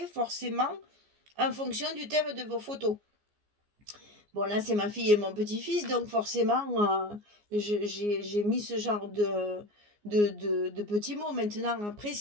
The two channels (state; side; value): late; left; 14 ms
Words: forcément en fonction du thème de vos photos. Bon, là, c'est ma fille et mon petit-fils, donc forcément, j'ai mis ce genre de petits mots. Maintenant, après,